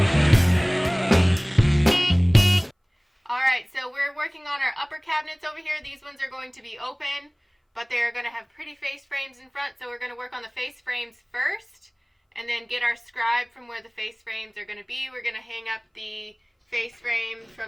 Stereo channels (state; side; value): identical; both; correlation 1.00